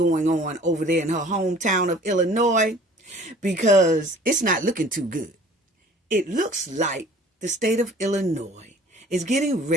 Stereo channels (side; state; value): both; normal; correlation 0.50